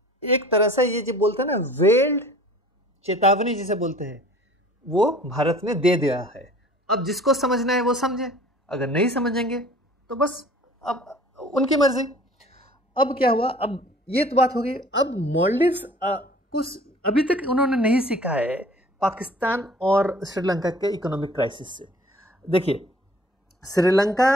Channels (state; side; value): normal; both; correlation 0.49